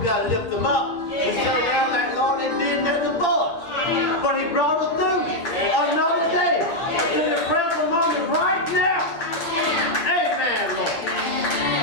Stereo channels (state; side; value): late; right; 8.8 ms